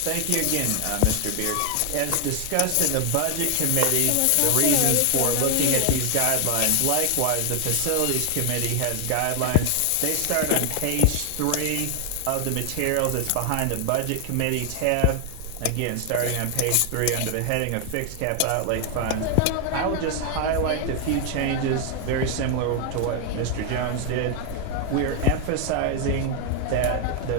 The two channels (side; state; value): both; different; correlation 0.00